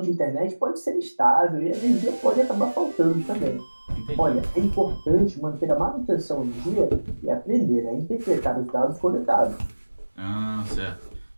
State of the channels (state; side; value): inverted; both; correlation -1.00